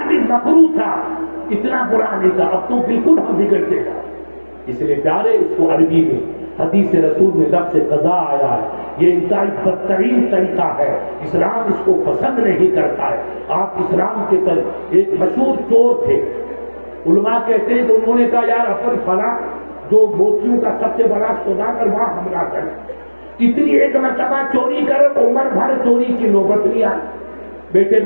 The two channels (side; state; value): both; inverted; correlation -1.00